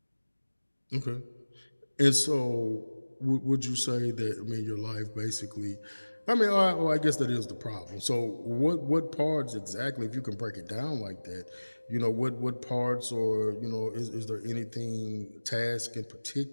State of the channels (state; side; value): inverted; both; correlation -1.00